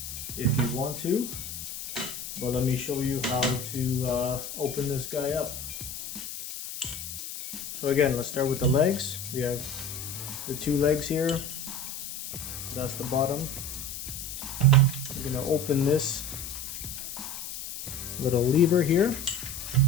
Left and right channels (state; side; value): noise; left; hiss, 8 dB below the sound